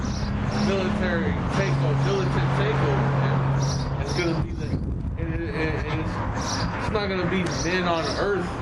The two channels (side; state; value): both; identical; correlation 1.00